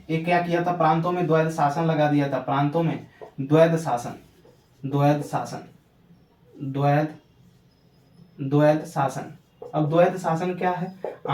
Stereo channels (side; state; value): both; identical; correlation 1.00